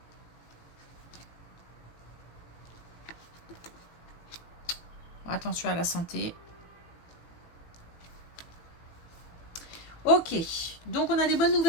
Attention à la santé. Ok, donc on a des bonnes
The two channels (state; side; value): late; right; 18 ms